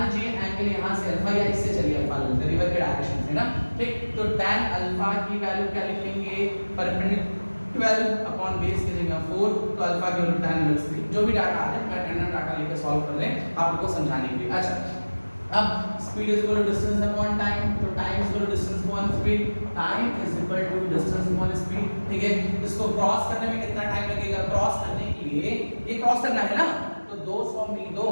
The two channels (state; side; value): inverted; both; correlation -1.00